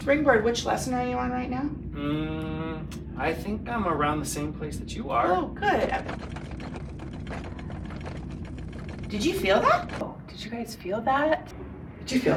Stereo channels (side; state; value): both; identical; correlation 1.00